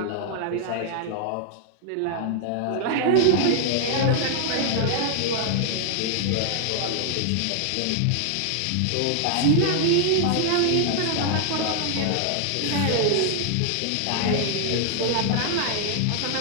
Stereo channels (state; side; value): different; both; correlation 0.00